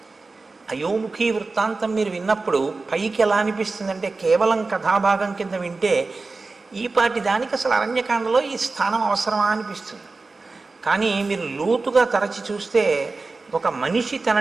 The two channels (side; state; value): left; quieter; 3.8 dB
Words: అయోముఖి వృత్తాంతం మీరు విన్నప్పుడు పైకి ఎలా అనిపిస్తుందంటే కేవలం కథాభాగం కింద వింటే ఈ పాటి దానికి అసలు అరణ్యకాండలో ఈ స్థానం అవసరమా అనిపిస్తుంది. కానీ మీరు లోతుగా తరచి చూస్తే ఒక మనిషి